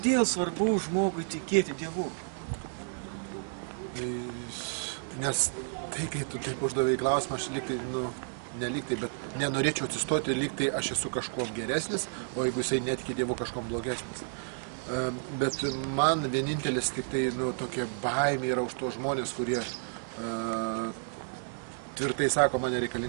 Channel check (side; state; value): left; silent; digital silence